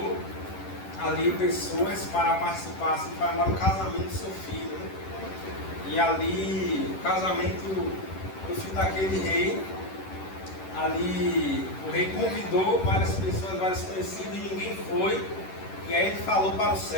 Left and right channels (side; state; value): right; late; 11 ms